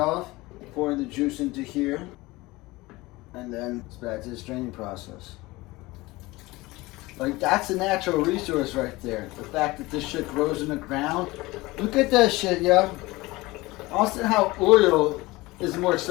pour the juice into here. And then it's back to the straining process. Like, that's a natural resource right there. The fact that this shit grows in the ground. Look at that shit, yo. Also, how oil is more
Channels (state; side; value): quieter; right; 20.9 dB